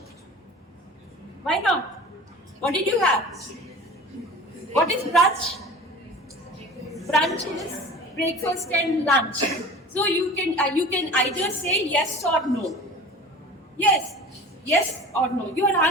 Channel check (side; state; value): both; normal; correlation 0.40